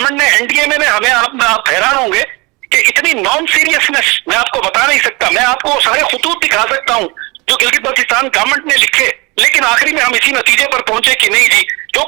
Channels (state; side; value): quieter; left; 26.3 dB